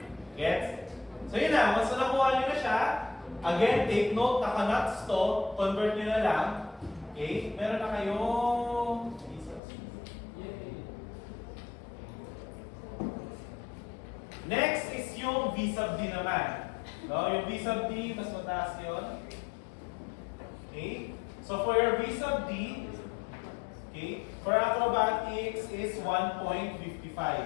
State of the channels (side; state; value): right; drops out; at 9.6 s